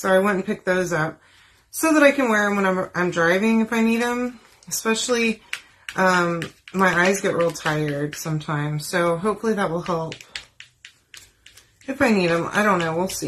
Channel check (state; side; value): identical; both; correlation 1.00